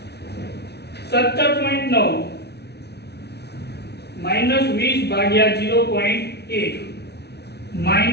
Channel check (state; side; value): late; right; 0.49 ms